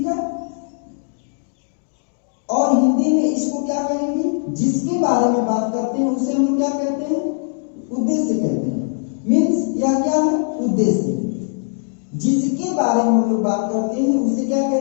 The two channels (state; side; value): silent; right; 61 dB below the other